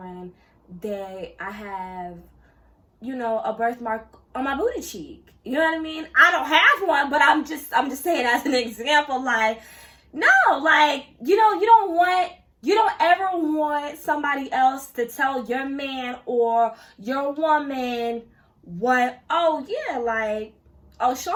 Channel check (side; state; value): both; identical; correlation 1.00